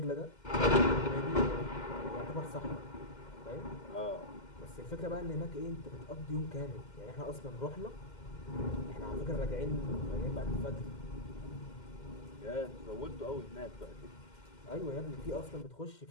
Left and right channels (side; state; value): right; late; 2.1 ms